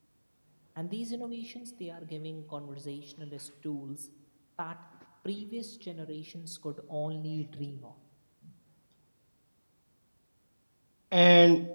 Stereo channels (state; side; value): inverted; both; correlation -1.00